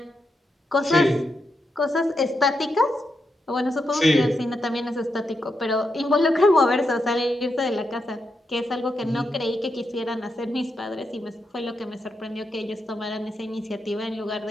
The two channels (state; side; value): normal; both; correlation 0.84